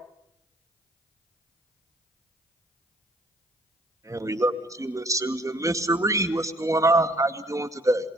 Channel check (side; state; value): both; normal; correlation 0.60